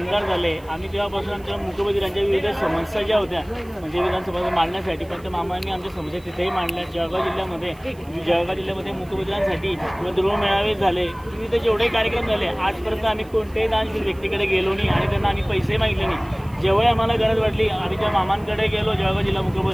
झाले, आम्ही तेव्हापासून आमच्या मुकबधीरांच्या विविध समस्या ज्या होत्या म्हणजे विधानसभा मांडण्यासाठी पण त्या मामांनी आमच्या समस्या तिथेही मांडल्या। जळगाव जिल्ह्यामध्ये मुकबधीरांसाठी गृह मेळावे झाले, विविध जेवढे कार्यक्रम झाले आजपर्यंत आम्ही कोणत्याही दानशील व्यक्तीकडे गेलो नाही आणि त्यांना आम्ही पैसे मागितले नाही। जेव्हा आम्हाला गरज वाटली आम्ही त्या मामांकडे गेलो जळगाव जिल्हा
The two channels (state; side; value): noise; right; hiss, 28 dB below the sound